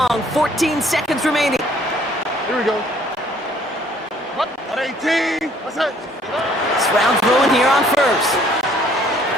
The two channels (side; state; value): both; normal; correlation 0.60